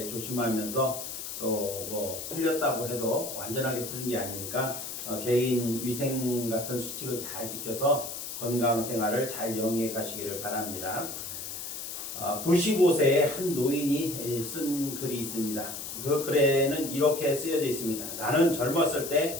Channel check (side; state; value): left; noise; hiss, 7 dB below the sound